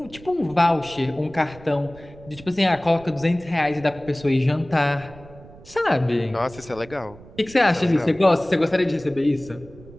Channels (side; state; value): right; noise; rumble, 20 dB below the sound